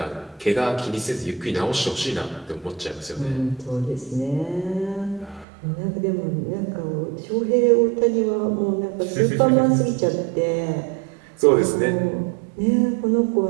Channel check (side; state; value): left; drops out; at 5.5 s